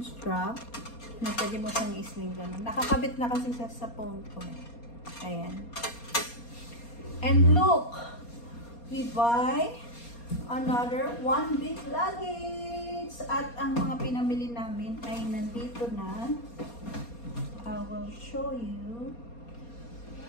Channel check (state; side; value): late; right; 4.2 ms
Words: strap. Na pwede mo siyang isling ganun. Nakakabit na kasi siya sa phone ko. Ayan. And look, we buy another one big luggage. At ang mga pinamili namin ay nandito na. I will show you.